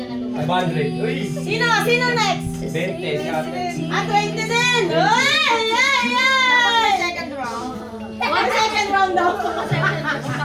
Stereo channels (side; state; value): both; identical; correlation 1.00